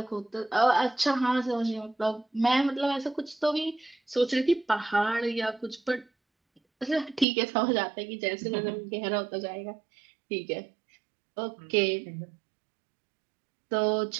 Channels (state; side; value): drops out; left; at 7.2 s